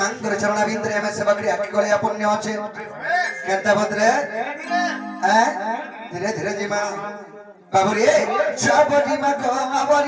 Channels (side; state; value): both; identical; correlation 1.00